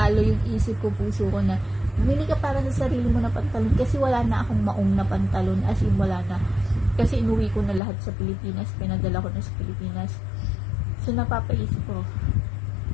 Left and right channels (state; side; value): drops out; right; at 7.8 s